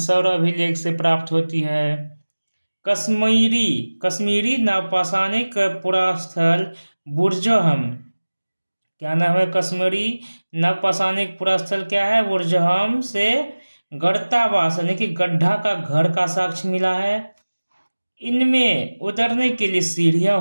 अभिलेख से प्राप्त होती है। कश्मीरी नवपाषाणिक पुरास्थल बुर्जहम, क्या नाम है? कश्मीरी नवपाषाणिक पुरास्थल क्या है? बुर्जहम से गढ़तावास यानी कि गड्ढा का घर का साक्ष्य मिला है। इनमें उतरने के लिए सीढ़ियां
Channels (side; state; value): both; inverted; correlation -1.00